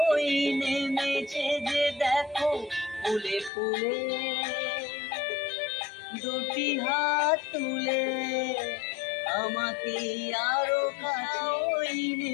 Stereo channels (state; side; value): drops out; right; at 3.5 s